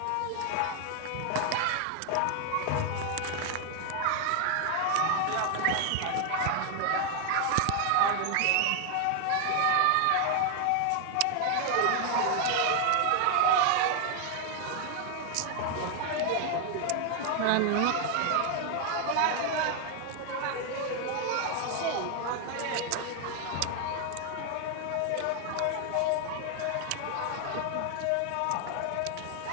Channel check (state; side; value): different; both; correlation 0.00